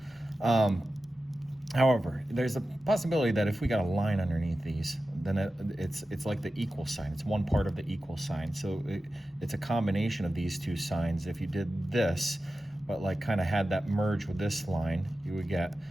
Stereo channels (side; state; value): both; normal; correlation 0.93